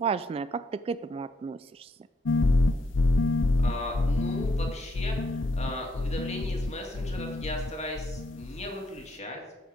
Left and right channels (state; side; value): normal; both; correlation 0.74